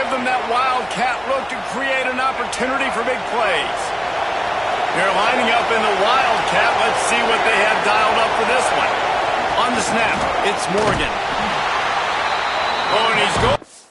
them that wildcat look to create an opportunity for big plays. They're lining up in the wildcat. Let's see what they have dialed up for this one. On the snap, it's Morgan. Oh, and he's going.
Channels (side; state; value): both; identical; correlation 1.00